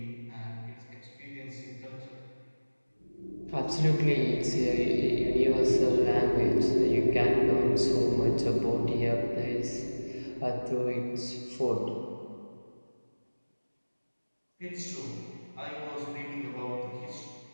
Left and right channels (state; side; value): inverted; both; correlation -1.00